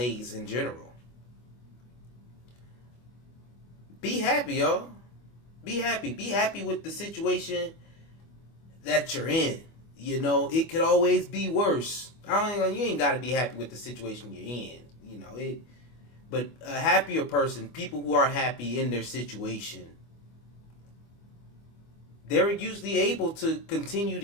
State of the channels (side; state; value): right; late; 25 ms